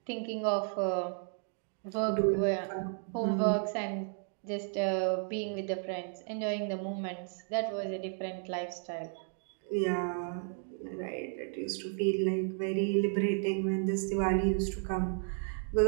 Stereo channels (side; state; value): left; silent; 56 dB below the other